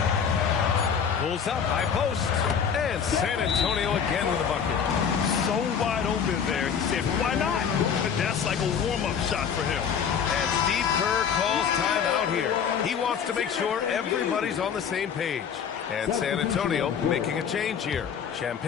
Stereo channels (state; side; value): quieter; right; 7.3 dB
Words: Pulls up, high post. And San Antonio again with a bucket. So wide open there. He said, why not? But that's like a warm-up shot for him. And Steve Kerr calls timeout here. He wants to make sure everybody's on the same page. And San Antonio making a change here.